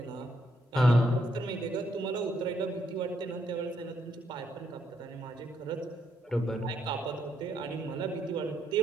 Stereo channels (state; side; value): normal; both; correlation 0.75